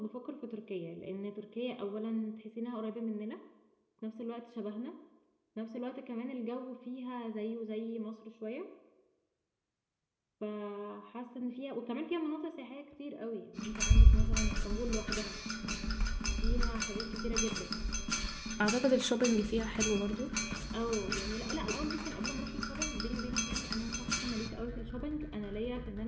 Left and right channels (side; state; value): both; identical; correlation 1.00